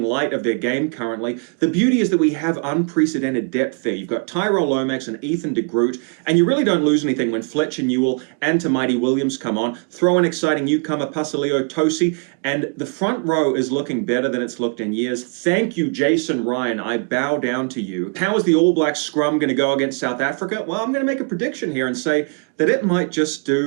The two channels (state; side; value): quieter; left; 39.3 dB